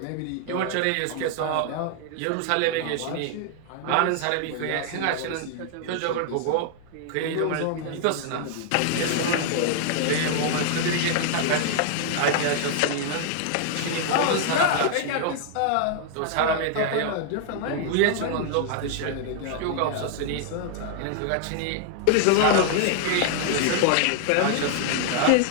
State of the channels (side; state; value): both; different; correlation 0.00